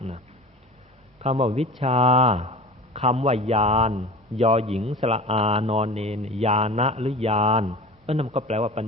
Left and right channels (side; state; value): both; normal; correlation 0.36